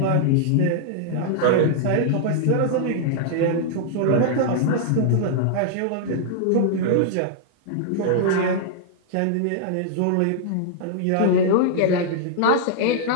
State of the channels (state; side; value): different; both; correlation -0.01